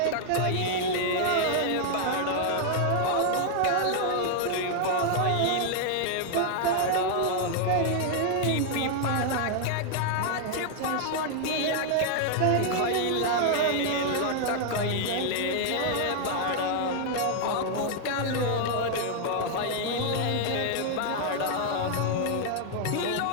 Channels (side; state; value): both; different; correlation 0.00